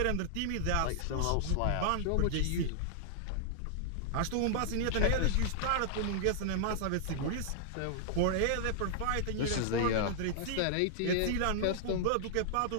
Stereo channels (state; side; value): different; both; correlation -0.01